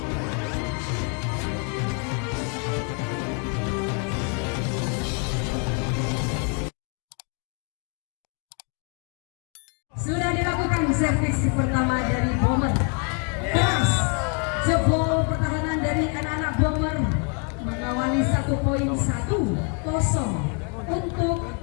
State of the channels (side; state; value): right; quieter; 37.2 dB